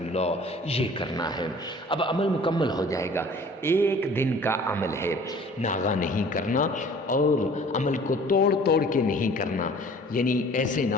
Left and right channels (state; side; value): normal; both; correlation 0.49